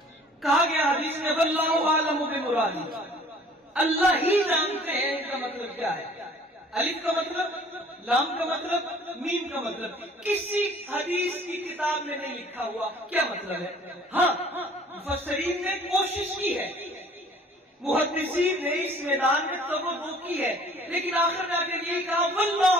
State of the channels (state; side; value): normal; both; correlation 0.53